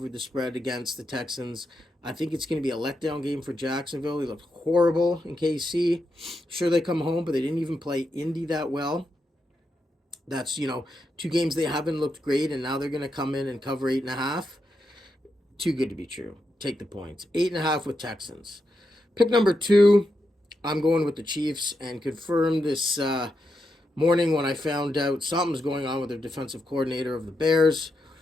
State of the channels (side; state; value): both; normal; correlation 0.85